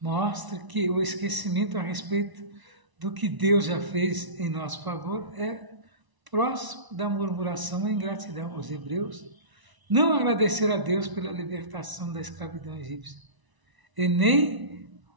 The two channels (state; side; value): late; left; 1.0 ms